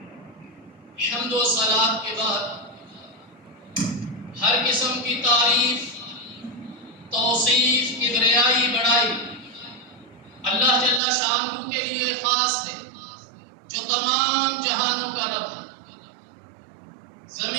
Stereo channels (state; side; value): drops out; left; at 11.0 s